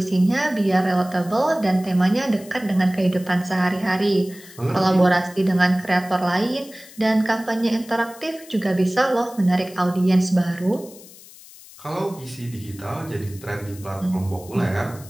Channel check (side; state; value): left; noise; hiss, 20 dB below the sound